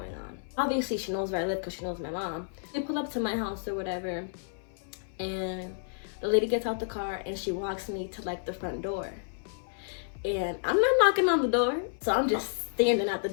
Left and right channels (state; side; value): silent; right; 57 dB below the other